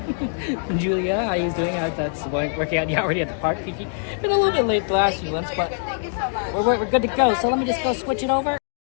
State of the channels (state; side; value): silent; right; digital silence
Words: Julia, how are you doing? That's working out. You already at the park, Kiki. Been a little bit late the last few months, but we're good to go. So let me just go switch it over.